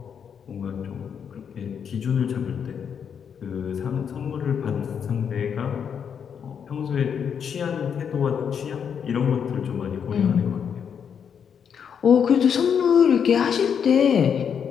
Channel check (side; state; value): right; quieter; 7.5 dB